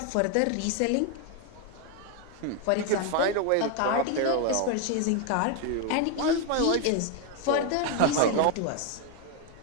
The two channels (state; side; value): different; both; correlation 0.01